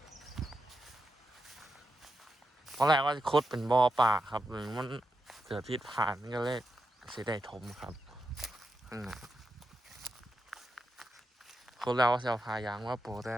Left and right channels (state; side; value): normal; both; correlation 0.86